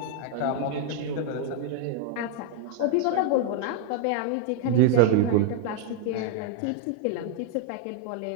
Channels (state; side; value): different; both; correlation 0.00